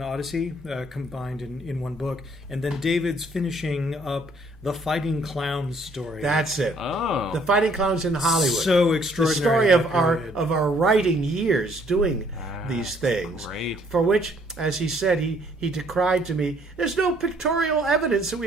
Odyssey, combined in one book. And then David's finishing up the Fighting Clowns story. That's it. Oh. The Fighting Clowns in Hollywood. So The extraordinary. story of our writing years doing these things. Great. For which, as he said, he decried to me, there's no pictorial evidence that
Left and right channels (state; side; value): normal; both; correlation 0.63